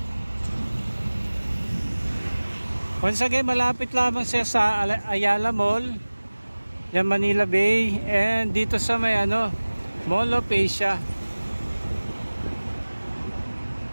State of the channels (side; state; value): both; inverted; correlation -1.00